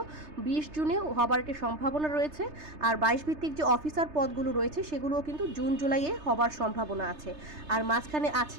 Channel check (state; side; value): late; left; 3.3 ms